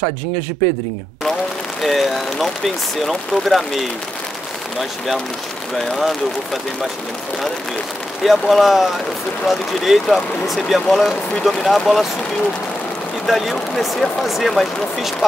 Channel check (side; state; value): both; normal; correlation 0.87